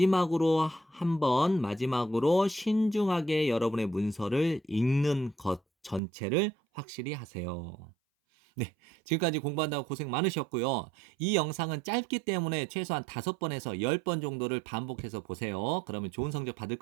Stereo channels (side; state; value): left; drops out; at 6.0 s